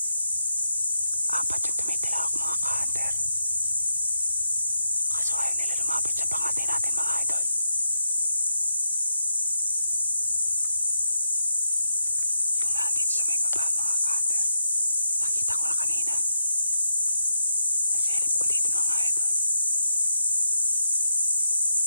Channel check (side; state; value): both; inverted; correlation -0.82